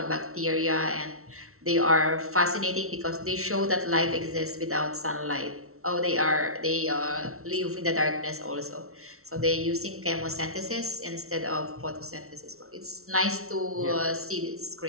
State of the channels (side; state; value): left; late; 0.63 ms